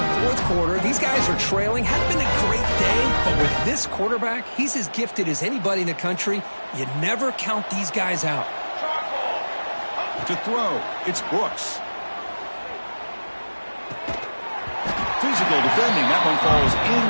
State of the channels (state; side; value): inverted; both; correlation -1.00